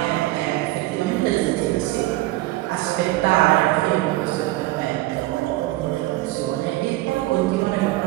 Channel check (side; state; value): left; quieter; 18.3 dB